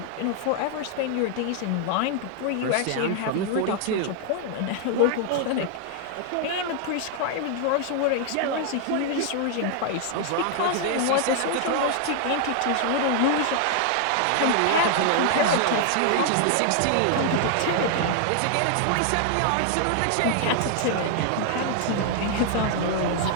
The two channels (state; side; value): different; both; correlation 0.00